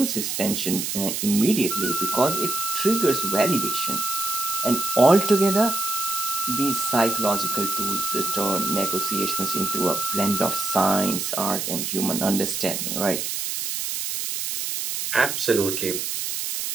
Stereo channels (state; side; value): noise; right; hiss, 3 dB below the sound